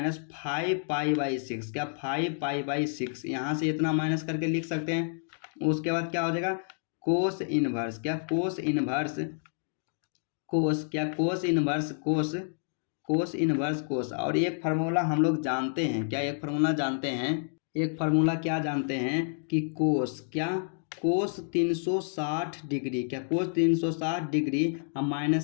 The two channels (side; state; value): right; silent; digital silence